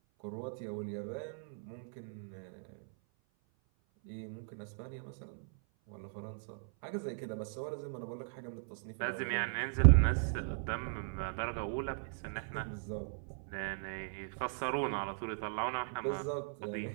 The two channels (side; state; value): left; silent; 53 dB below the other